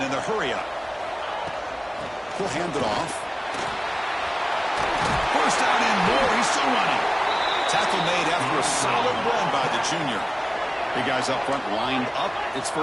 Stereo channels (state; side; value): identical; both; correlation 1.00